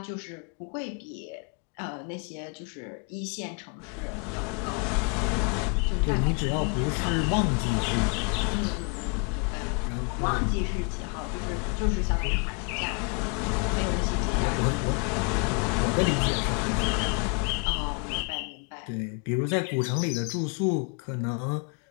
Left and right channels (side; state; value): right; quieter; 34.3 dB